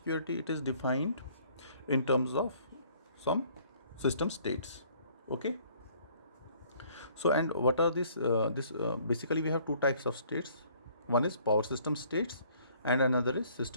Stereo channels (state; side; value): inverted; both; correlation -0.59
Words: it is defined in terms of some system states. Okay. So, and what are this basically we have two types of states. One is power system states and another is